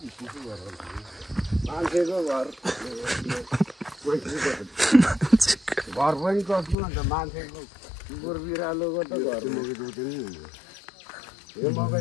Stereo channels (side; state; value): right; drops out; at 6.8 s